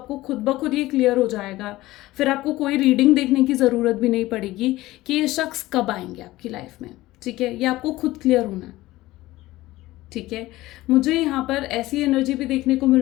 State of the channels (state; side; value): quieter; right; 17.5 dB